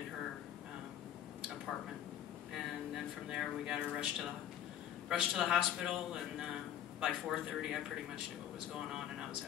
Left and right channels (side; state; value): right; quieter; 10.7 dB